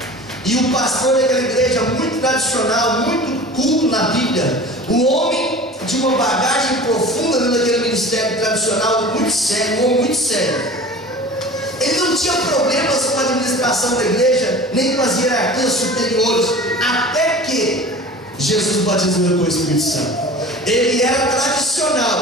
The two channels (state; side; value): normal; both; correlation 0.39